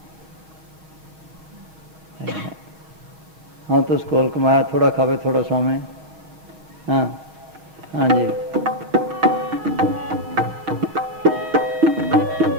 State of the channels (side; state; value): left; late; 6.4 ms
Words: हाँ तो स्कूल कमाया, थोड़ा खावे थोड़ा सोमे। हाँ हाँ जी।